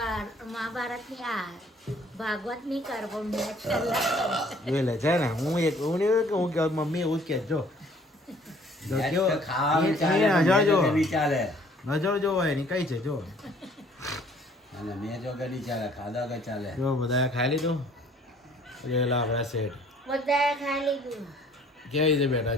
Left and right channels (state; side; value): normal; both; correlation 0.58